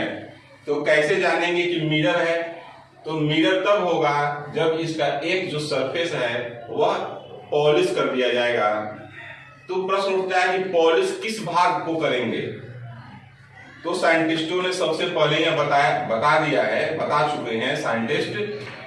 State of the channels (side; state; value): both; identical; correlation 1.00